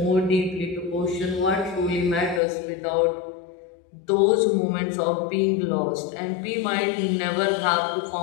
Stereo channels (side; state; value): right; drops out; at 2.4 s